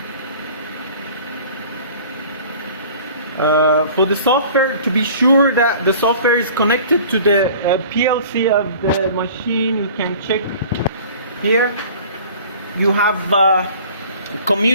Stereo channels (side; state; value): both; inverted; correlation -0.46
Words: For the software, to be sure that the software is connected to the PLC of the machine, you can check here. You have